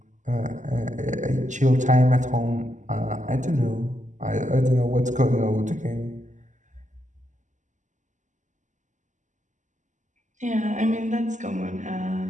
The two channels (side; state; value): left; late; 0.36 ms